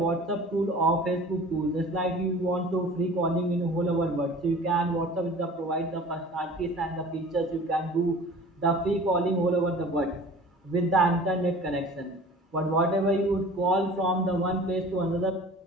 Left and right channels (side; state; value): both; normal; correlation 0.44